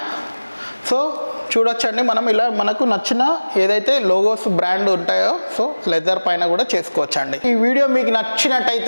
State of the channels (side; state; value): both; inverted; correlation -1.00